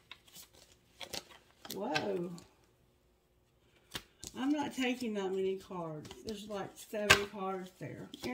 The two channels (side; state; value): both; identical; correlation 1.00